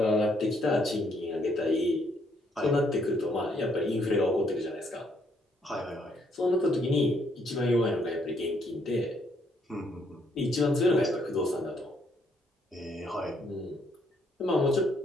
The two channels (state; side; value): normal; both; correlation 0.70